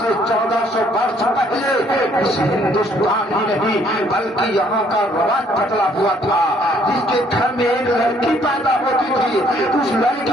1400 برس پہلے اس ہندوستان ہی نہیں بلکہ یہاں کا رواج بدلا ہوا تھا. جس کے گھر میں ایک لڑکی پیدا ہوتی تھی, اس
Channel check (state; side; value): normal; both; correlation 0.64